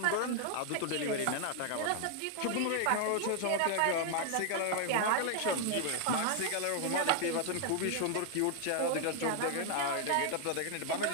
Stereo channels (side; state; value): both; different; correlation 0.00